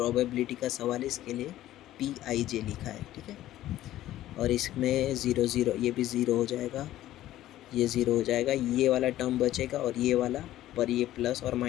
का सवाल है, इसके लिए PIJ लिखा है। ठीक है, और इसमें 0 0 ये भी 0 हो जाएगा, ये 0 हो जाएगा, ये वाला टर्म बचेगा और ये वाला पर ये प्लस और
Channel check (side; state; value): right; quieter; 14.0 dB